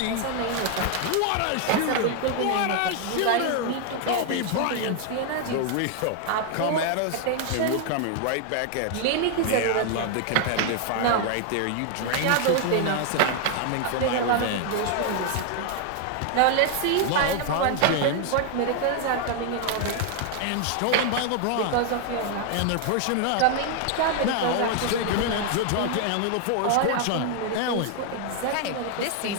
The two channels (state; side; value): different; both; correlation 0.00